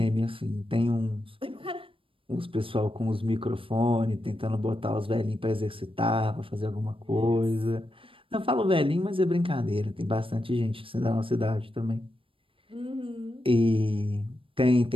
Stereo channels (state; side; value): late; left; 0.26 ms